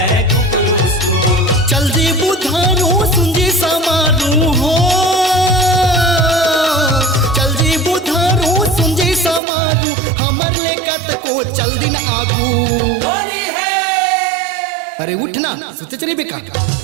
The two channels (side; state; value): left; drops out; at 9.4 s